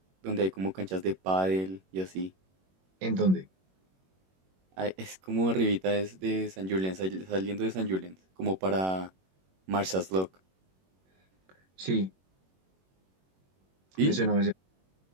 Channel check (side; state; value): left; late; 21 ms